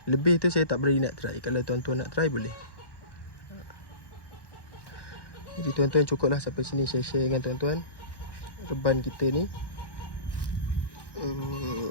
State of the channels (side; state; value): right; late; 1.1 ms